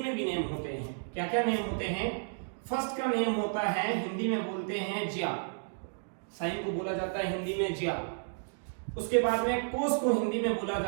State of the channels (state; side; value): silent; left; digital silence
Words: में भी नेम होते हैं। क्या क्या नेम होते हैं? फर्स्ट का नेम होता है, हिंदी में बोलते हैं ज्या। साइन को बोला जाता है हिंदी में ज्या। उसके बाद में कोस को हिंदी में बोला